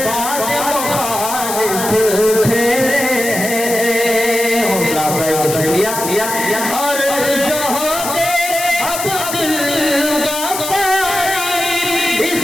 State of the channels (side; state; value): left; noise; hiss, 5 dB below the sound